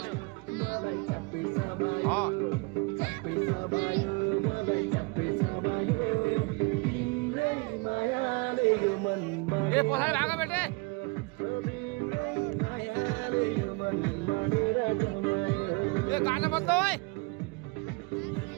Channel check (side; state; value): left; quieter; 28.6 dB